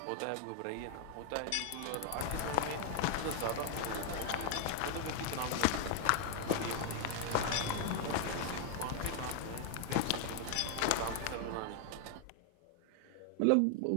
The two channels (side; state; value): both; different; correlation 0.00